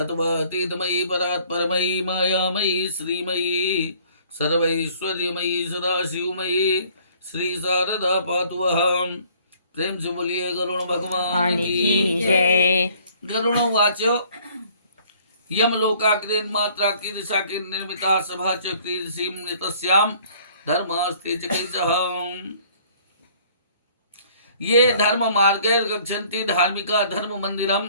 परात्परमयी मायामयी श्रीमयी सर्वैश्वर्यमयी सदाशिवमयी श्री शारदा पातु वहां। प्रेम से बोलिए गरुण भगवान की जय। गरुण वाच यमलोकाग्रेन मात्रा की दिशा की निर्मिता सभा चक्रीसीम नितस्याम धर्मास्ते चिकित्सः। ये धर्म मार्गे गच्छन्ति धार्मिका धर्म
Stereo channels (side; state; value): both; inverted; correlation -0.57